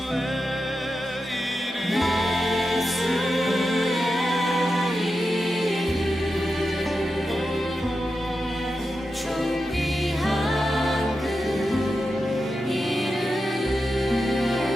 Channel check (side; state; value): both; normal; correlation 0.90